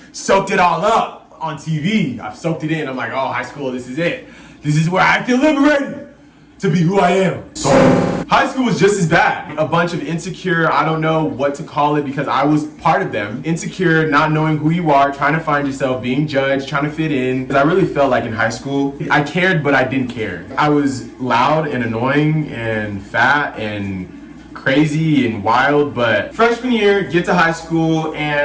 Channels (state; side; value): identical; both; correlation 1.00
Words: soaked it all up on TV. I've soaked it in. I'm like, oh, high school, this is it. This is where I feel liberated to be who I am. So, high school was just as bad. A bunch of insecure, I don't know what to call it because I was part of them. Insecure, not knowing who you are, trying to find yourself, being judged, trying to fit in. I really felt like in high school, I cared, but I didn't care. I was loud and annoying and fat and crazy and wild, but freshman year, get to high school,